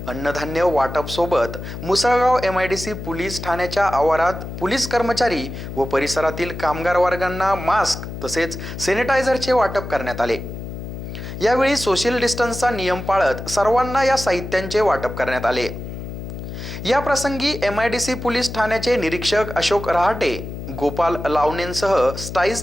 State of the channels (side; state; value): left; noise; hum, 9 dB below the sound